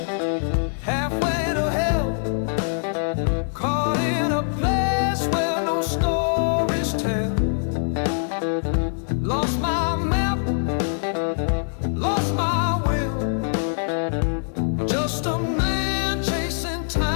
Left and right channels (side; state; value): right; silent; digital silence